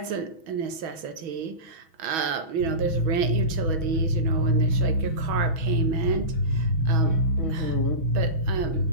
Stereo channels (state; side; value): late; left; 6.2 ms